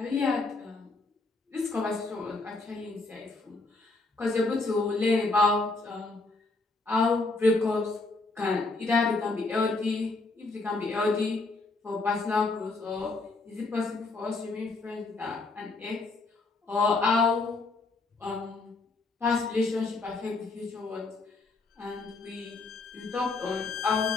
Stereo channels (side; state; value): right; quieter; 3.5 dB